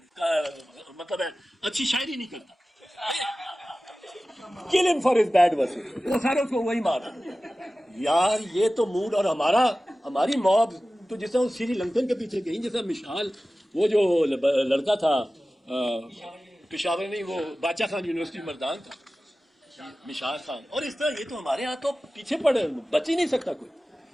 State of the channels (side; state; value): both; normal; correlation 0.96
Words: مطلب ہے اچھی شاعری نہیں کرتا, kill him for his bad verses. وہ سارے اس کو وہی مارا. یار یہ تو موڈ. اور ہماری موب تو جس طرح سری لنکن کے پیچھے گئی, جیسا مشال وہ جو لڑکا تھا پشاور نہیں, وہ باچا خان یونیورسٹی مردان کا مشال خان, اور اس طرح یہ تو ہمارے یہاں تو پیچھے پڑے, بچ ہی نہیں سکتا کوئی.